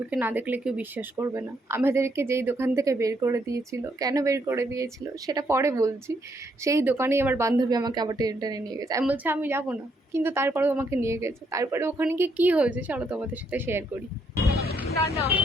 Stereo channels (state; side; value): normal; both; correlation 0.74